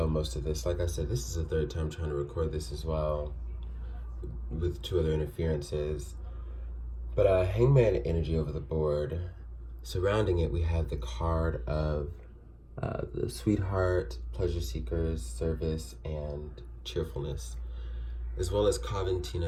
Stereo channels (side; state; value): both; identical; correlation 1.00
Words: most of this. Like I said, this is the third time trying to record this as well, with two other interferences. But Hangman energy over the board. Surrounding it, we have the card of the Sweetheart, Pleasure Seekers, Service, and Cheerfulness, as well as